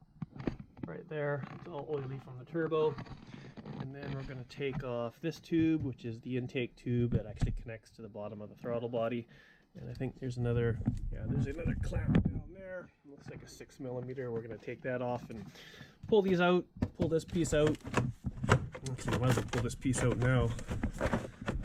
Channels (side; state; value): both; identical; correlation 1.00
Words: right there. It's all oily from the turbo. And then we're going to take off this tube, which is the intake tube that actually connects to the bottom of the throttle body. And I think there's another, there's another clamp down there. Looks like a 6mm. We're going to take that off and pull these out, pull this piece out. Actually, I might as well pull this piece out now,